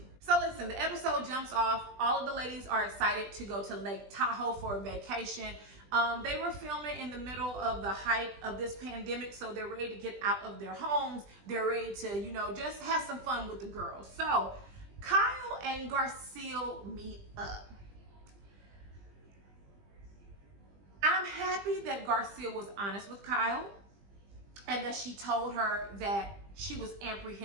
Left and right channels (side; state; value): left; late; 20 ms